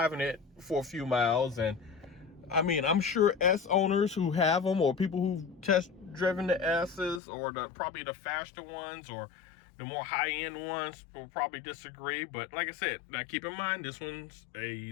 it for a few miles. And I mean, I'm sure S owners who have them, or people who've test driven the S's, or probably the faster ones or the more high-end ones, will probably disagree. But like I said, now keep in mind, this one's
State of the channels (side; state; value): right; drops out; at 7.2 s